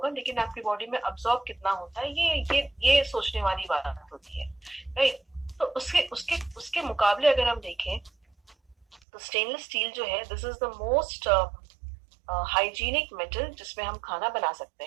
लेकिन आपकी बॉडी में अब्सॉर्ब कितना होता है ये सोचने वाली बात होती है, राइट। तो उसके उसके उसके मुकाबले अगर हम देखें तो स्टेनलेस स्टील जो है this is the most hygienic metal जिसमें हम खाना बना सकते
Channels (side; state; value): left; drops out; at 9.0 s